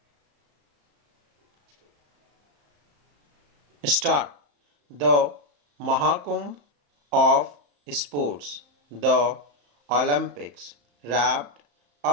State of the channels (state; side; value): late; left; 34 ms